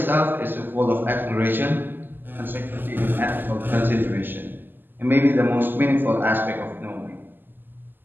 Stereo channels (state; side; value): late; left; 0.092 ms